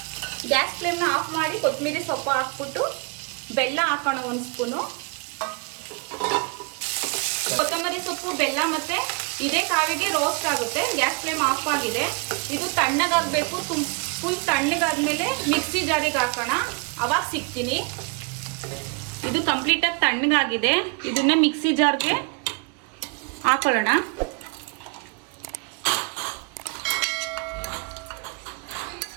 ಗ್ಯಾಸ್ ಫ್ಲೇಮ್ನ ಆಫ್ ಮಾಡಿ ಕೊತ್ತಂಬರಿ ಸೊಪ್ಪು ಹಾಕ್ಬಿಟ್ಟು ಬೆಲ್ಲ ಹಾಕೋಣ 1 ಸ್ಪೂನು. ಕೊತ್ತಂಬರಿ ಸೊಪ್ಪು, ಬೆಲ್ಲ ಮತ್ತೆ ಇದೇ ಕಾವಿಗೆ ರೋಸ್ಟ್ ಆಗುತ್ತೆ. ಗ್ಯಾಸ್ ಫ್ಲೇಮ್ ಆಫ್ ಆಗಿದೆ. ಇದು ತಣ್ಣಗಾಗಬೇಕು. ಫುಲ್ ತಣ್ಣಗಾದ್ಮೇಲೆ ಮಿಕ್ಸಿ ಜಾರಿಗೆ ಹಾಕೋಣ. ಅವಾಗ ಸಿಗ್ತೀನಿ. ಇದು ಕಂಪ್ಲೀಟಾಗಿ ತಣ್ಣಗಾಗಿದೆ. ಇದನ್ನ ಮಿಕ್ಸಿ ಜಾರ್ಗೆ ಹಾಕೊಳ್ಳೋಣ.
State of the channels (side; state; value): left; quieter; 33.2 dB